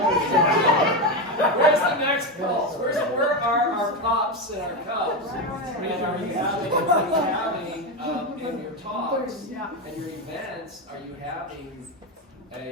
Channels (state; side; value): normal; both; correlation 0.13